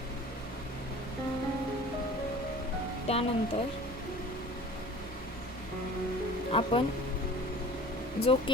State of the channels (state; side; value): normal; both; correlation 0.43